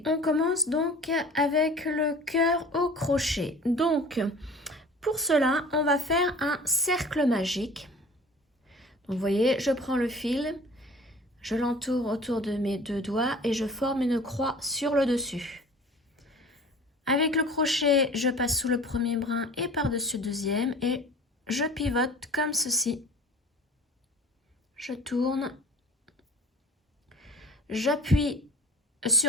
on commence donc avec le cœur au crochet. Donc pour cela, on va faire un cercle magique. Donc vous voyez, je prends le fil, je l'entoure autour de mes deux doigts et je forme une croix sur le dessus. Avec le crochet, je passe sous le premier brin et par-dessus le deuxième et je pivote comme ceci. Je tourne, j'appuie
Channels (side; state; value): both; normal; correlation 0.44